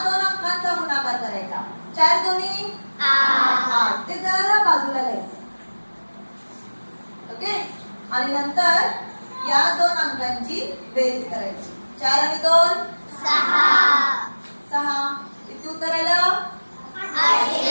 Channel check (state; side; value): inverted; both; correlation -1.00